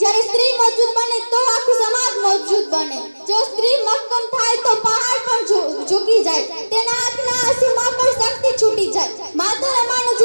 બને તો આખું સમાજ મજબૂત બને. જો સ્ત્રી મક્કમ થાય તો પહાડ પણ ઝૂકી જાય, તેના આંખના આંસુમાં પણ શક્તિ છૂટી જાય. માતા રમાનું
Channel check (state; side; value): inverted; both; correlation -1.00